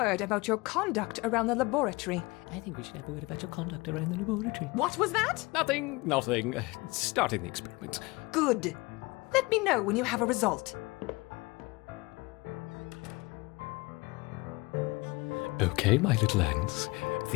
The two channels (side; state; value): right; quieter; 24.1 dB